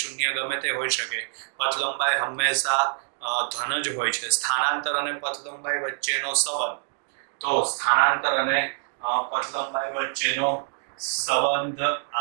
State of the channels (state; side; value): silent; left; 61 dB below the other